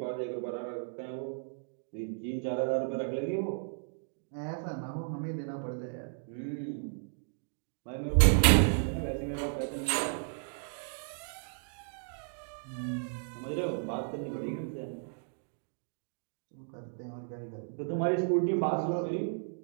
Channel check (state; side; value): silent; left; digital silence